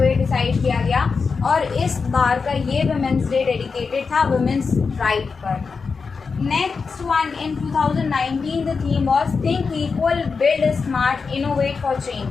डिसाइड किया गया, और इस बार का ये विमेंस डे डेडिकेटेड था विमेंस राइट पर। Next one, in 2019 the theme was Think Equal, Build Smart, Innovate for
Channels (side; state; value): right; quieter; 5.0 dB